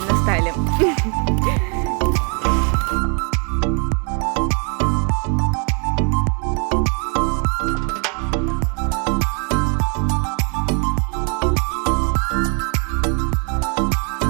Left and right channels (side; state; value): left; quieter; 37.7 dB